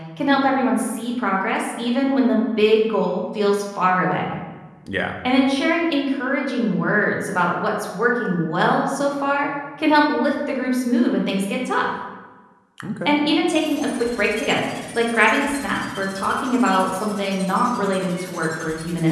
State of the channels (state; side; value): identical; both; correlation 1.00